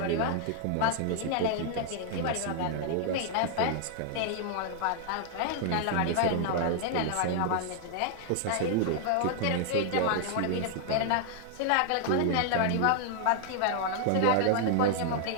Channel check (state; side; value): different; both; correlation 0.00